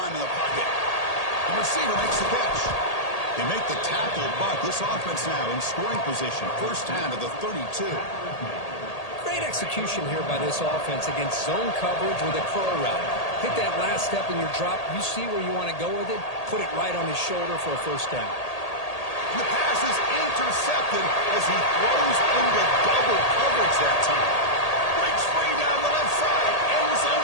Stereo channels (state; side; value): late; right; 1.8 ms